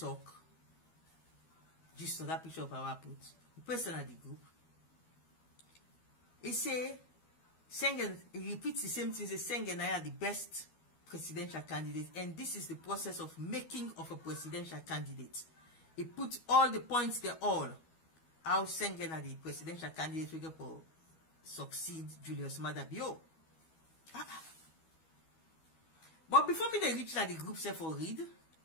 Just on that picture of our put. The person at the group. He say, Senge, he repeats the same thing. He say, Senge and I are the best presidential candidate, and this is the process of making of a presidential candidate. He put all the points there, all how Senge na the presidential candidate we get for succeed Julius Maada Bio. But before me they reach like the group say for read,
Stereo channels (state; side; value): late; right; 12 ms